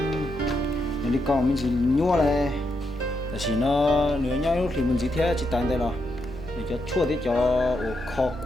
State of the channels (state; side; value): normal; both; correlation 0.82